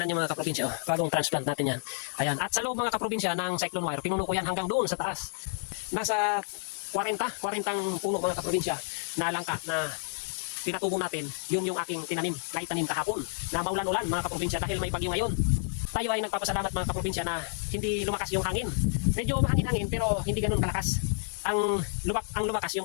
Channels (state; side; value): silent; right; 58 dB below the other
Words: nyo mga kaprobinsya, oh, bagong transplant natin yan. Ayan, at sa loob mga kaprobinsya ng cyclone wire, pinuno ko yan hanggang doon sa taas. Nasa 40 puno mga kaprobinsya na langka na pinatubo natin, yun yung aking tinanim na itanim kahapon na maulan-ulan mga kaprobinsya dahil may bagyo ngayon. Tayo ay nagpapasalamat mga kaprobinsya na hindi lumakas yung hangin. Medyo mahangin-hangin pero hindi ganun kalakas. Ang lumakas